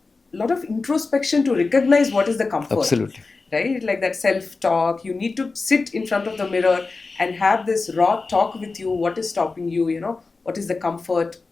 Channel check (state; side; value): quieter; right; 3.9 dB